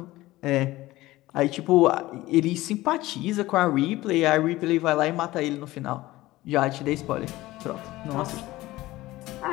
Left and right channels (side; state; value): right; quieter; 17.8 dB